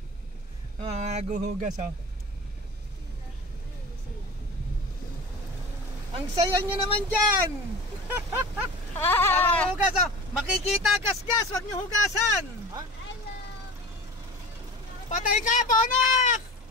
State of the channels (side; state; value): both; normal; correlation 0.35